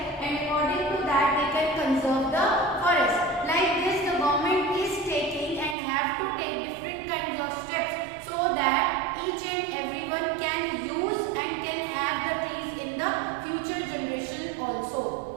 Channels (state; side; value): drops out; left; at 5.8 s